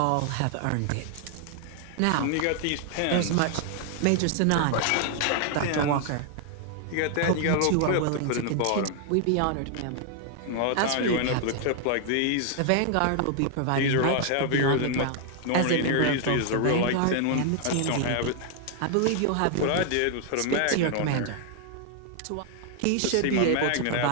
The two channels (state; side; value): different; both; correlation 0.00